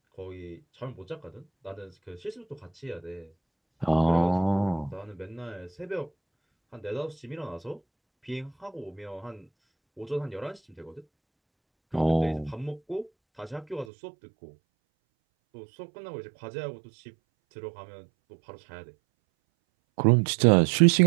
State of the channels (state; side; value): drops out; left; at 13.9 s